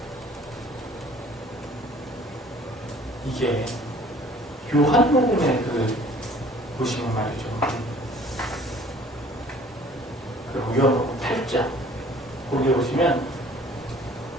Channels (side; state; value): both; normal; correlation 0.52